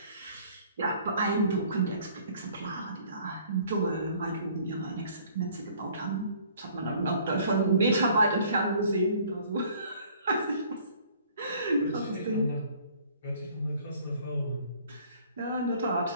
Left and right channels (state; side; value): inverted; both; correlation -0.56